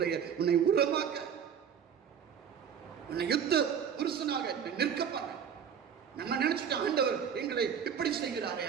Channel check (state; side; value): quieter; left; 7.9 dB